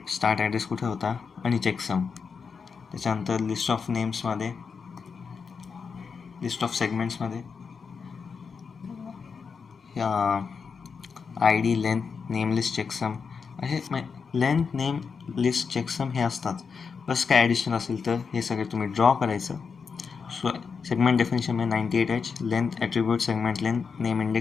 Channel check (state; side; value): quieter; right; 5.6 dB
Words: start address कुठे होता आणि चेकसम. त्याच्यानंतर लिस्ट ऑफ नेम्समध्ये, लिस्ट ऑफ सेगमेंट्समध्ये ID length name list checksum असे लेंथ नेम लिस्ट चेकसम हे असतात. प्लस काय ॲडिशनल असेल तर हे सगळे तुम्ही ड्रॉ करायचं. सो सेगमेंट डेफिनेशनमध्ये 98H length attribute segment length name